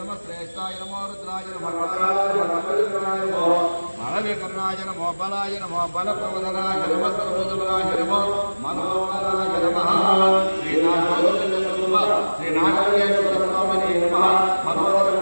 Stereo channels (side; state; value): both; inverted; correlation -1.00